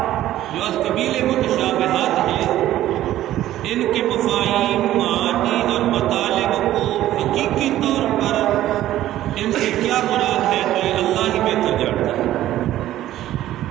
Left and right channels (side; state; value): left; quieter; 13.6 dB